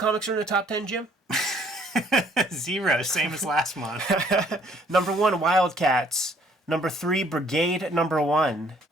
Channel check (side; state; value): both; normal; correlation 0.61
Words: are in the top 10, Jim? 0, same as last month. Number 1, Wildcats. Number 3, Brigade number 1.